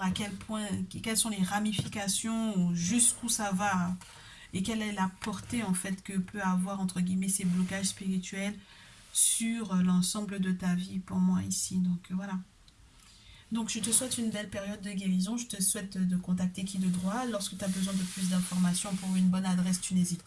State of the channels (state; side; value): identical; both; correlation 1.00